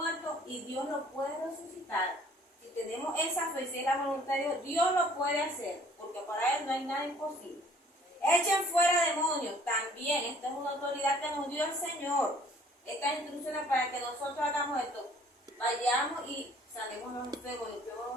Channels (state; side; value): normal; both; correlation 0.55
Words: y Dios lo puede resucitar. Si tenemos esa fe, si es la voluntad de Dios, Dios lo puede hacer, porque para Él no hay nada imposible. Echen fuera demonios. También, esta es una autoridad que nos dio el Señor. Estas instrucciones para que nosotros hagamos esto. Vayamos y sanemos los enfermos,